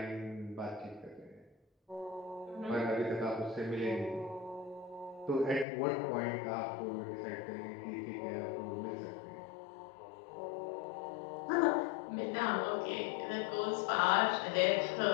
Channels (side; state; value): right; drops out; at 5.7 s